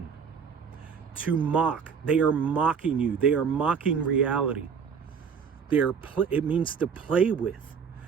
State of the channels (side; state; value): left; quieter; 6.5 dB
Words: To mock. They are mocking you. They are mocking reality. It means to play with.